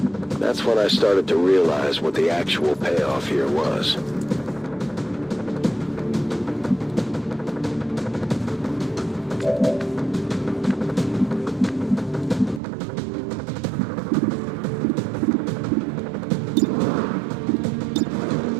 That's when I started to realize what the actual payoff here was.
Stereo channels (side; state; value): left; drops out; at 12.6 s